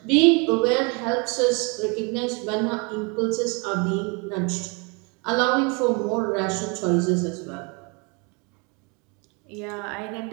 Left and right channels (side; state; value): left; quieter; 31.9 dB